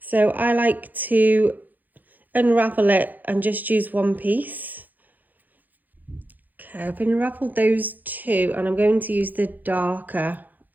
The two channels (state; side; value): late; left; 0.084 ms